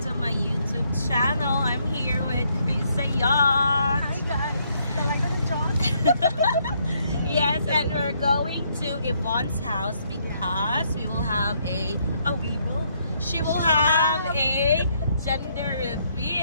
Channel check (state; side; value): inverted; both; correlation -0.72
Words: my YouTube channel. I'm here with Krisa Yacht. Hi guys! Talaga na John? Yes, and we're going to Yvonne's house because we will have she will have a gender